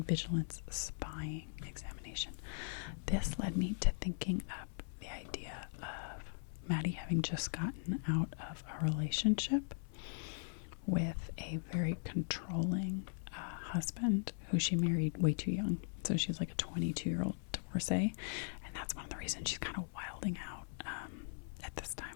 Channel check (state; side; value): silent; right; digital silence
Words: vigilance, spying, examination. This led me to thinking up the idea of Maddie having just gotten out of a relationship with a very controlling husband who she married way too young. So she's like a 22-year-old divorcee. And that's one of the reasons she's kind of wilding out at this time